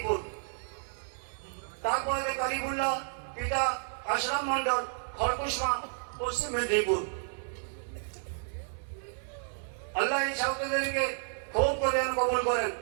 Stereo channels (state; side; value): silent; left; digital silence